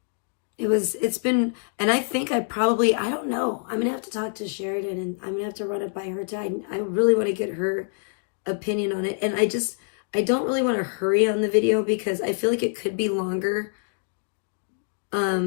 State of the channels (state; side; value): silent; right; digital silence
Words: it's been, and I think I don't know. I'm gonna have to talk to Sheridan, and I'm gonna have to run it by her too. I really want to get her opinion on it. And I don't really want to hurry on the video because I feel like it could be longer.